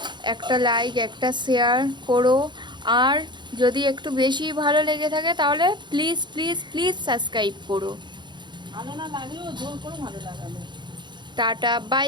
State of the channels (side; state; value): left; late; 0.22 ms